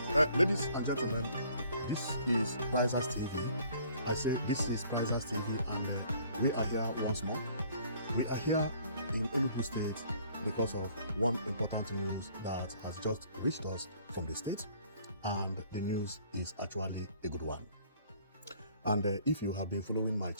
Ladies and gentlemen, this is Prizers TV. I said this is Prizers TV, and we are here once more. We are here in Enugu State because of one important news that has just reached us from the state, and the news is actually a good one. And if you have been following my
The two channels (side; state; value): both; inverted; correlation -0.57